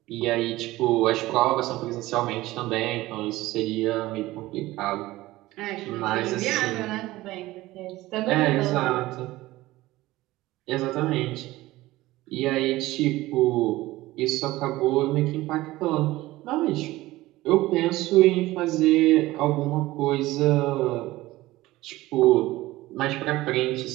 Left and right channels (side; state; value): left; quieter; 17.9 dB